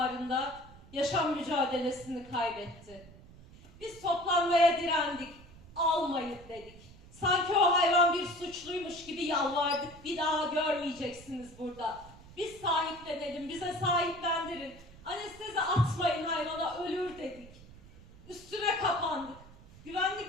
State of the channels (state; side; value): noise; right; rumble, 21 dB below the sound